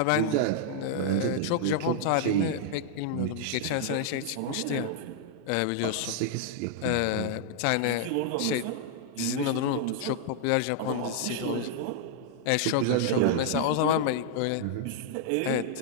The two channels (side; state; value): both; different; correlation -0.01